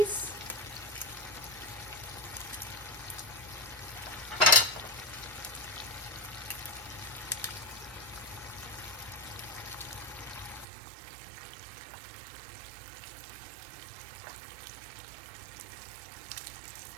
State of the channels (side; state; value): left; drops out; at 10.7 s